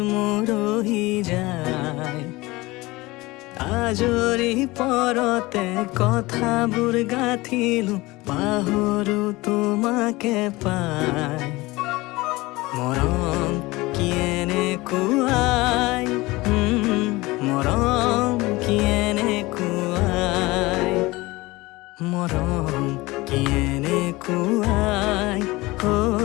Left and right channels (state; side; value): quieter; right; 21.2 dB